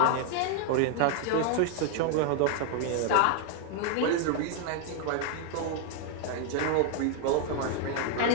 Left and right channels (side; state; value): both; different; correlation 0.00